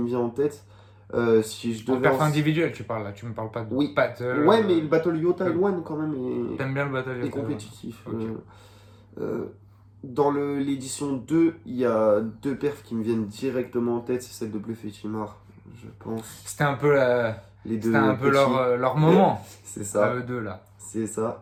vient en tête. Si je En devais. perf individuel, tu parles là. Tu me parles pas de Oui. battle. Ouais, mais le battle Yota Elwan, quand même, T'aimes bien le battle est Yota, compétitif. Ok. Dans l'édition 2, il y a deux perfs qui me viennent directement en tête. C'est celle de Bluff et Chimar, je pense. C'était un peu, Les deux c'était un peu petits. leur moment. C'est À ça. eux deux là. C'est ça.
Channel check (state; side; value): identical; both; correlation 1.00